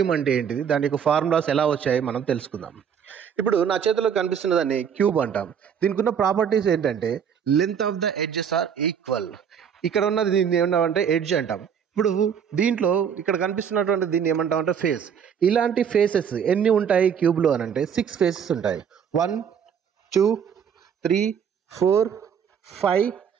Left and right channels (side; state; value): left; quieter; 7.7 dB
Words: అంటే ఏంటిది, దాని యొక్క ఫార్ములాస్ ఎలా వచ్చాయి మనం తెలుసుకుందాం. ఇప్పుడు నా చేతిలో కనిపిస్తున్న దాన్ని క్యూబ్ అంటాం. దీనికి ఉన్న ప్రాపర్టీస్ ఏంటంటే length of the edges are equal. ఇక్కడ ఉన్నది దీన్ని ఏమన్నామంటే ఎడ్జ్ అంటాం. ఇప్పుడు దీంట్లో ఇక్కడ కనిపిస్తున్నటువంటి దీన్ని ఏమంటాం అంటే ఫేస్. ఇలాంటి ఫేసెస్ ఎన్ని ఉంటాయి క్యూబ్లో అని అంటే 6 ఫేసెస్ ఉంటాయి. 1 2 3 4 5